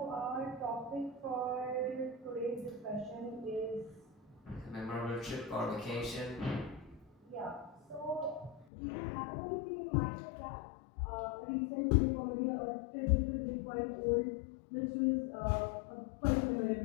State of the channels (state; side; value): drops out; right; at 8.7 s